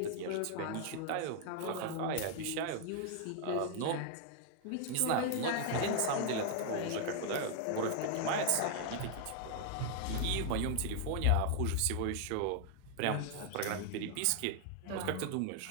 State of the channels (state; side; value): different; both; correlation 0.00